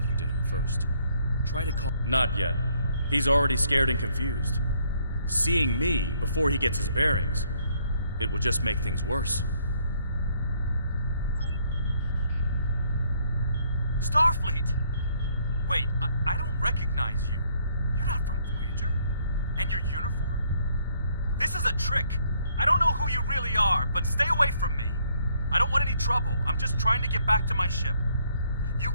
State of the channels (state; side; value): inverted; both; correlation -0.68